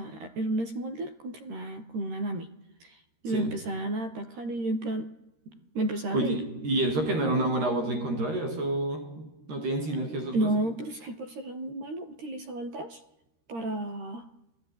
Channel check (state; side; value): late; left; 13 ms